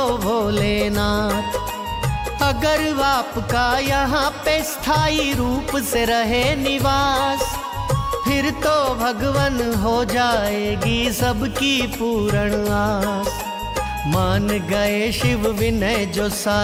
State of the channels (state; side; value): identical; both; correlation 1.00